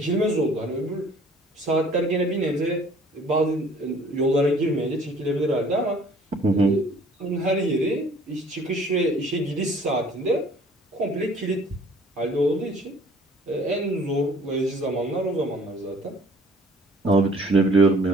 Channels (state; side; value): normal; both; correlation 0.54